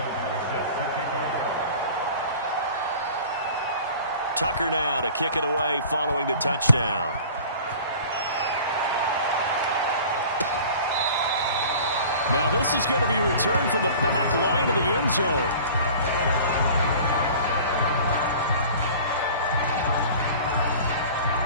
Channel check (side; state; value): both; inverted; correlation -0.43